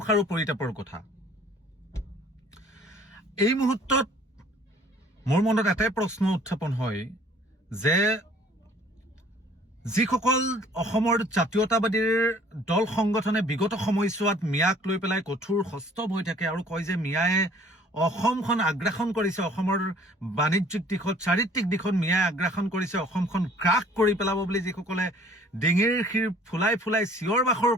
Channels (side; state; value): both; normal; correlation 0.55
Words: আৰু পৰিতাপৰ কথা। এই মুহূৰ্তত মোৰ মনত এটাই প্ৰশ্ন উত্থাপন হয় যে যিসকল অসমৰ জাতীয়তাবাদীৰ দল সংগঠনে বিগত সময়ছোৱাত মিয়াক লৈ পেলাই কঠোৰ হস্তম হৈ থাকে আৰু কয় যে মিয়াই অসমখন আগ্ৰাসন কৰিছে, অসমৰ বাণিজ্যিক দিশত চাৰিত্ৰিক দিশত মিয়াই আগ্ৰাসন কৰিছে, অসমখন গ্ৰাস কৰি পেলাব বুলি যিসকলে ডিঙিৰ শিৰ ফুলাই ফুলাই চিঞৰ বাখৰ